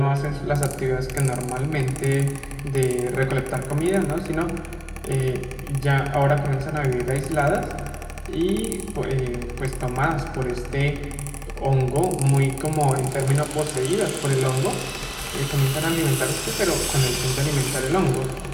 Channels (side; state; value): both; identical; correlation 1.00